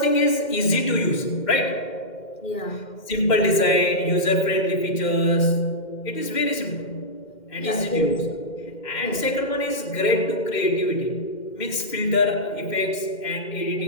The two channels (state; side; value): late; right; 2.1 ms